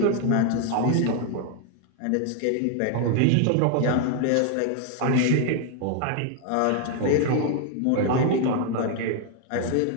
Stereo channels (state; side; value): different; both; correlation 0.00